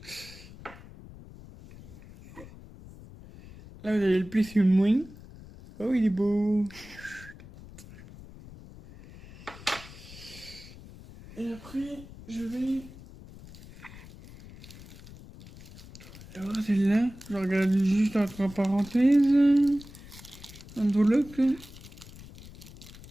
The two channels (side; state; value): left; noise; rumble, 18 dB below the sound